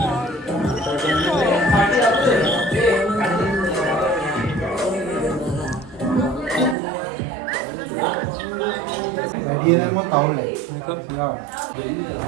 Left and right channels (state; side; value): drops out; left; at 6.8 s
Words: Dia nak mau tahu leh. Ya.